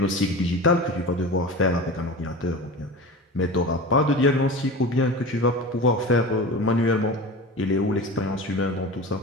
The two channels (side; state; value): both; normal; correlation 0.31